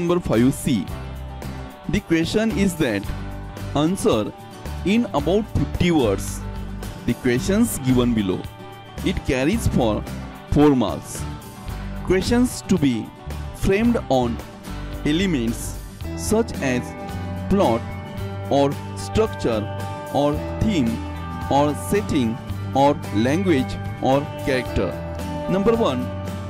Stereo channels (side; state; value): both; identical; correlation 1.00